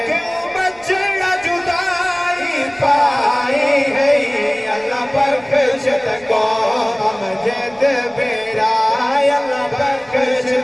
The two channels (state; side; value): noise; right; rumble, 28 dB below the sound